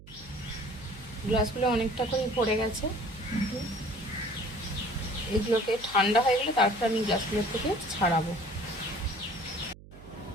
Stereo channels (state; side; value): noise; right; hum, 19 dB below the sound